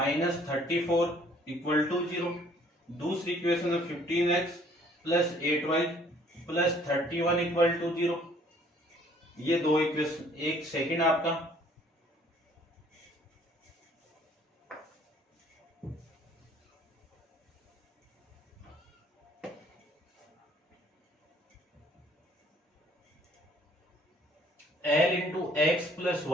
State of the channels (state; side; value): normal; both; correlation 0.59